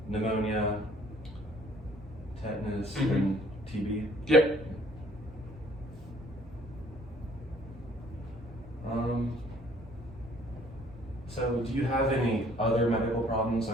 pneumonia, tetanus, and TB. Yep. So do you have any other medical problems?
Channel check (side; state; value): both; normal; correlation 0.58